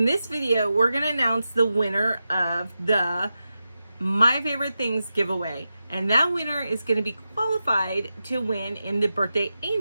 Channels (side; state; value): both; inverted; correlation -0.91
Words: this video, we're gonna announce the winner of the My Favorite Things giveaway, and that winner is gonna be qualified to win in the Birthday